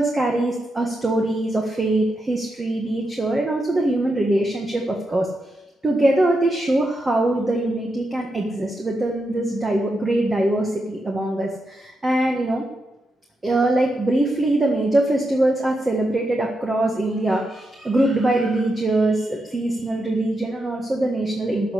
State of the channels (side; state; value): both; normal; correlation 0.85